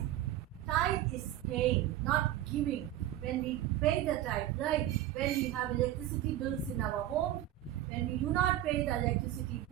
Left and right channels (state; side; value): quieter; left; 13.3 dB